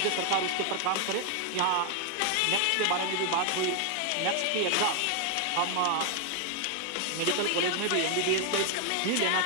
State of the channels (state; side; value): different; both; correlation 0.00